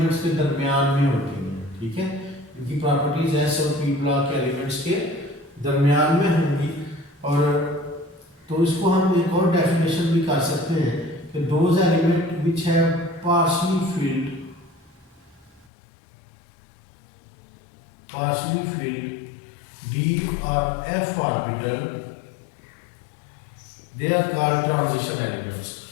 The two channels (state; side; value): drops out; right; at 15.7 s